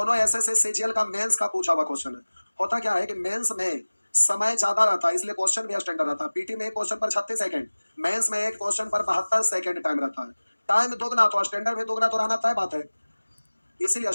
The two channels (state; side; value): inverted; both; correlation -1.00